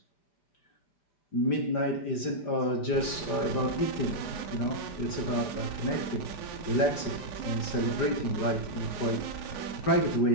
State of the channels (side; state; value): right; late; 5.0 ms